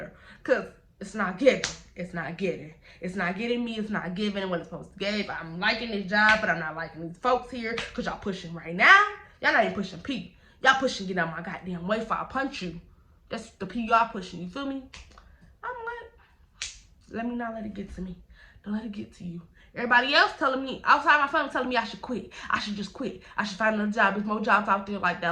because it's not giving. It's not getting. It's not getting me. It's not giving what it's supposed to give. I'm liking this job, but I'm not liking these folks here because y'all pushing right now. Y'all not even pushing P. Y'all pushing get out my goddamn way before I punch you. That's the P y'all pushing. You feel me? I'm like, let me not let it get to me. Don't let it get to you. Everybody else telling me, outside my family telling me I should quit. I should just quit. I should find another job. There's more jobs out there like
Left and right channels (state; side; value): identical; both; correlation 1.00